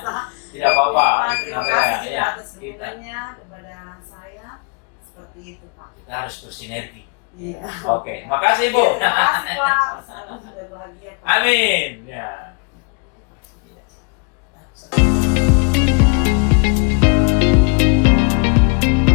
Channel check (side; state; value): right; quieter; 34.7 dB